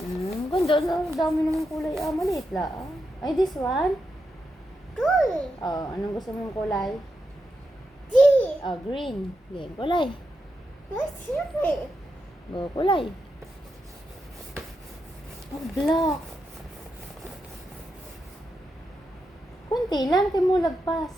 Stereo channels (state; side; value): normal; both; correlation 0.86